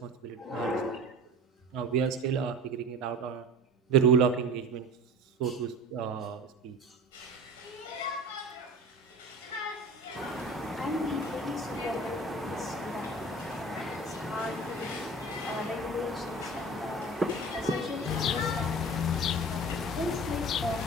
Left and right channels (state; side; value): normal; both; correlation 0.38